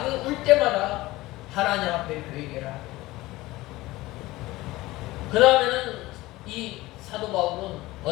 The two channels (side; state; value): right; quieter; 18.8 dB